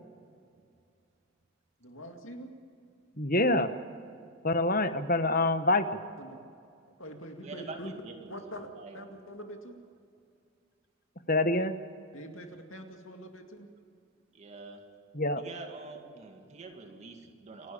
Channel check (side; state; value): both; normal; correlation -0.11